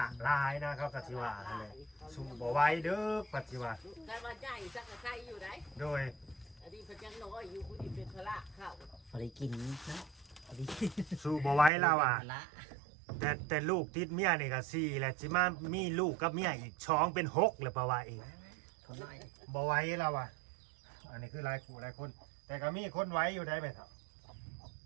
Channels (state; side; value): drops out; left; at 11.7 s